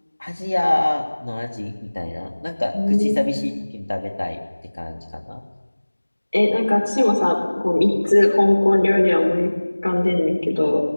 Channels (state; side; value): inverted; both; correlation -1.00